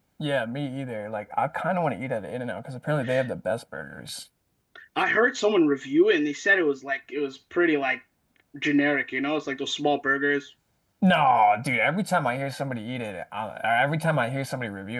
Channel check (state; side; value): identical; both; correlation 1.00